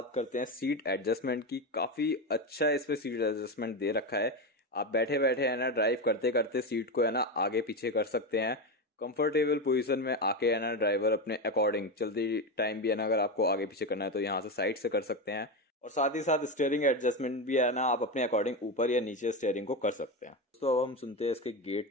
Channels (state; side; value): normal; both; correlation 0.16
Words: करते हैं सीट एडजस्टमेंट की। काफ़ी अच्छा इसमें सीट एडजस्टमेंट दे रखा है। आप बैठे बैठे है ना ड्राइव करते करते सीट को है ना आगे पीछे कर सकते हैं। कंफर्टेबल पोजीशन में आके है ना ड्राइवर अपने अकॉर्डिंग चलती टाइम भी है ना अगर आपको आगे पीछे करना है तो यहाँ से साइड से कर सकते हैं। और साथ ही साथ स्टीयरिंग एडजस्टमेंट भी है ना आप अपने अकॉर्डिंग ऊपर या नीचे स्टीयरिंग को कर सकते हैं। दोस्तों अब हम सुनते हैं इसके